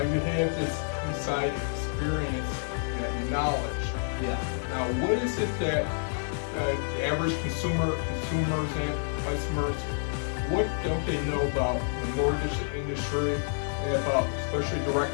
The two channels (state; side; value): silent; right; digital silence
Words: you have this inside experience and knowledge. Yeah. Now, what is it that the average consumers and customers, what don't they know about the mortgage industry and about especially